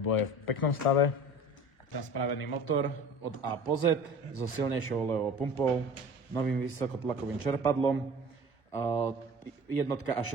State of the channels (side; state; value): right; late; 1.0 ms